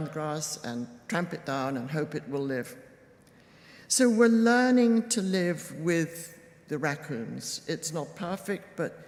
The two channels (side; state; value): both; identical; correlation 1.00